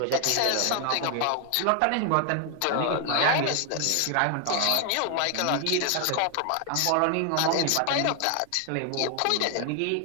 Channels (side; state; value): both; different; correlation 0.00